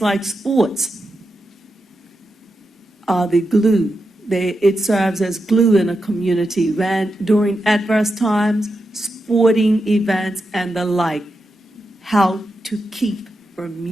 like sports are the glue. It serves as glue in a community when during adverse times, sporting events and the like, how to keep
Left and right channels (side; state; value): both; normal; correlation 0.88